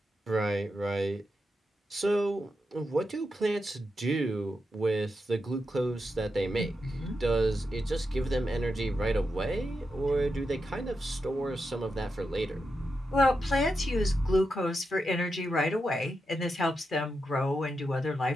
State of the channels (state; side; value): normal; both; correlation 0.87